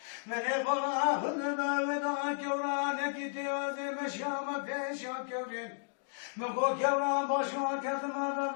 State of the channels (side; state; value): right; silent; digital silence